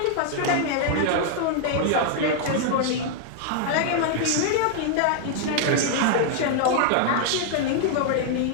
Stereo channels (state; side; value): different; both; correlation 0.00